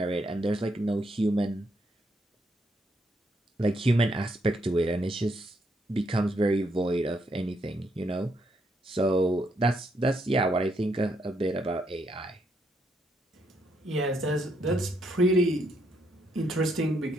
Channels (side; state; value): both; normal; correlation 0.75